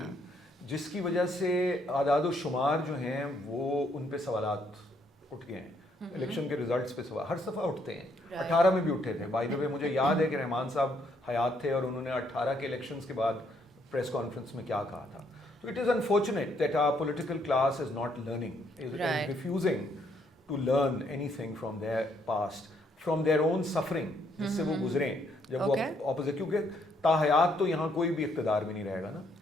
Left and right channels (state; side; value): normal; both; correlation 0.71